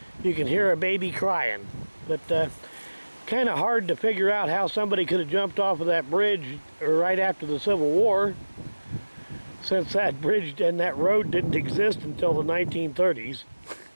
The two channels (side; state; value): both; inverted; correlation -1.00